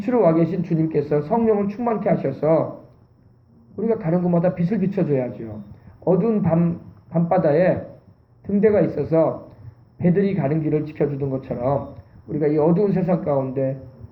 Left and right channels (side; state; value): both; identical; correlation 1.00